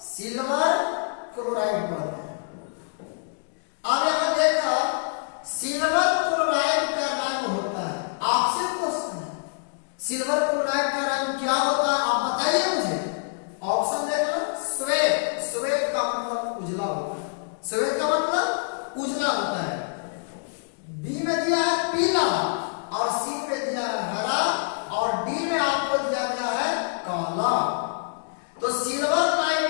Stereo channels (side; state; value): right; silent; digital silence